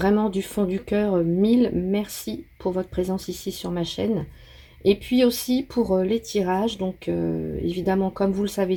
du fond du cœur, mille merci pour votre présence ici sur ma chaîne. Et puis aussi pour les tirages, donc évidemment comme vous le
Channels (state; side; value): identical; both; correlation 1.00